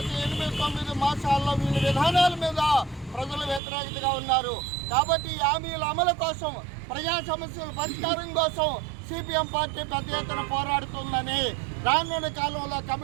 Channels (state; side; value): drops out; left; at 3.6 s